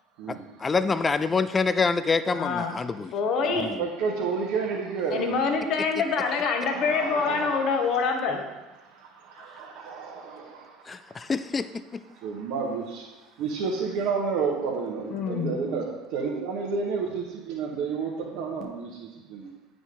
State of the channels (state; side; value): normal; both; correlation 0.50